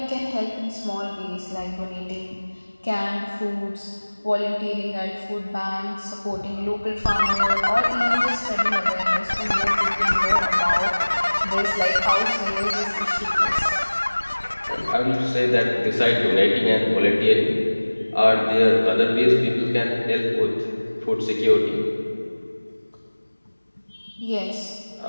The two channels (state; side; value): inverted; both; correlation -1.00